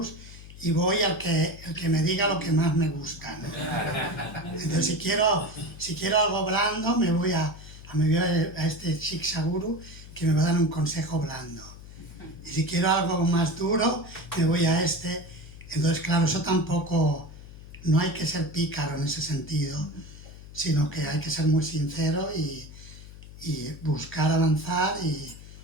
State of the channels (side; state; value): left; noise; hum, 16 dB below the sound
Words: y voy al que me diga lo que más me gusta, ¿no? Entonces, si quiero algo blando, me voy a este Shiksha Guru que me va a dar un consejo blando. Y si quiero algo más duro, me voy a este. Entonces, claro, eso tampoco, no hay que ser pícaro en ese sentido, sino que hay que ser muy sincero y buscar avanzar y